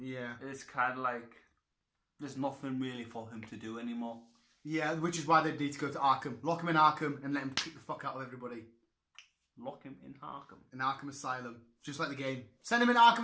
It's kind of like there's nothing really for him to do anymore. Yeah, which is why they need to go to Arkham. Lock him in Arkham and let him kick the fuck out of everybody. Lock him in Arkham. In Arkham Asylum. Just like the game. Send him in Arkham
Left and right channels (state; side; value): identical; both; correlation 1.00